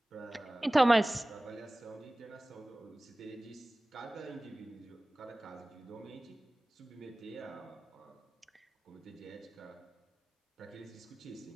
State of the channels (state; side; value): normal; both; correlation 0.98